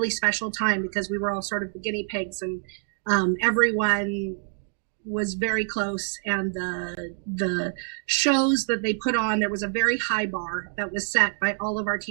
special time because we were all sort of the guinea pigs, and everyone was very close. And the shows that they put on, there was a very high bar that was set by all of our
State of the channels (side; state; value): left; silent; 55 dB below the other